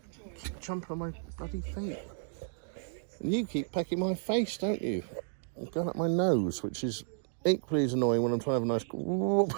Keep jumping on my bloody feet. And you keep pecking my face, don't you? And going up my nose, which is equally as annoying when I'm trying to have a nice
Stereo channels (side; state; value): left; silent; digital silence